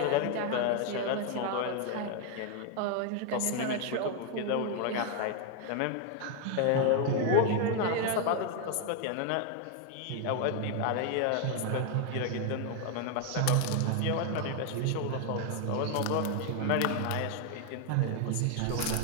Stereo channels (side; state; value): both; different; correlation 0.00